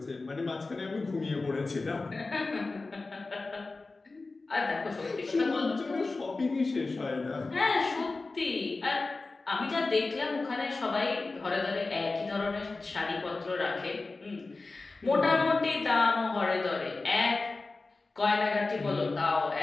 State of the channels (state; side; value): quieter; right; 3.6 dB